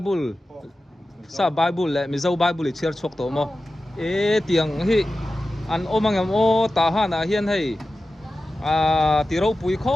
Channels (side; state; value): both; normal; correlation 0.94